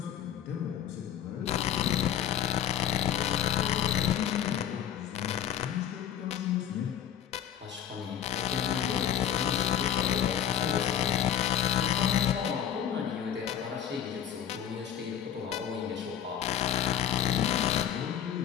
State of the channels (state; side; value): quieter; right; 9.8 dB